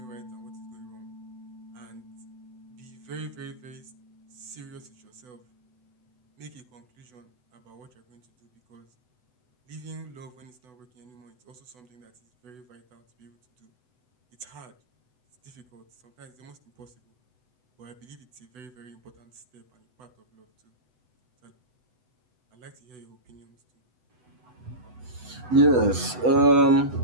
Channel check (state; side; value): late; left; 8.0 ms